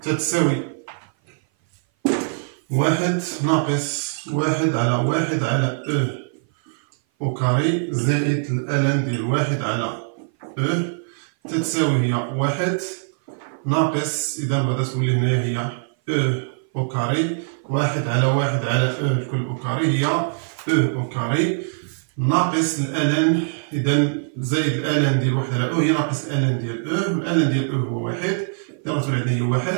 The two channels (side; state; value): left; silent; 57 dB below the other